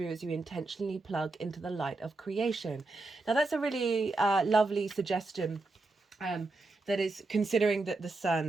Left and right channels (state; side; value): quieter; left; 3.3 dB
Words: as you intentionally plug into the light of creation. Now that's a really lovely suggestion. That is considering that the